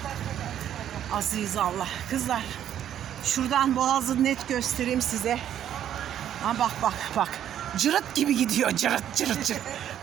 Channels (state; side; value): quieter; left; 10.4 dB